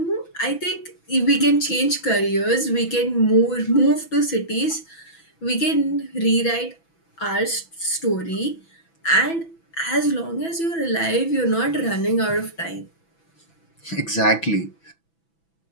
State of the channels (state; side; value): late; right; 6.0 ms